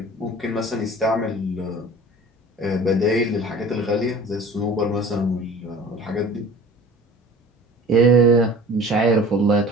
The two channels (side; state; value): both; normal; correlation 0.43